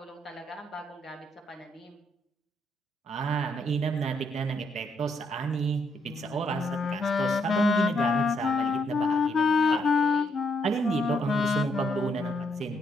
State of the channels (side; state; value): both; normal; correlation 0.74